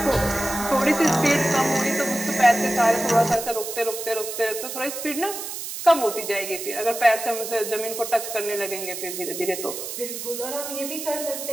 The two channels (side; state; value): right; noise; hiss, 7 dB below the sound